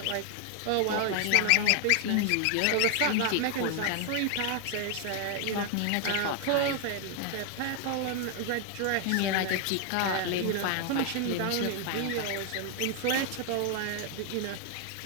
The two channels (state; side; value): different; both; correlation 0.00